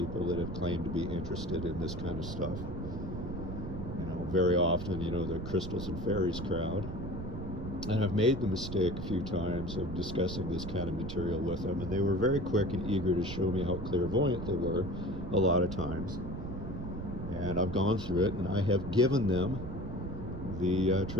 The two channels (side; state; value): right; noise; rumble, 6 dB below the sound